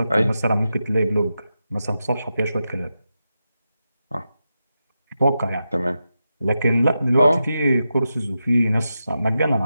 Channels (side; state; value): both; inverted; correlation -0.89